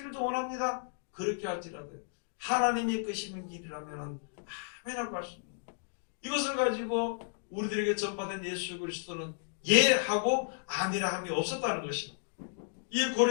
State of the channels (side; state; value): right; silent; digital silence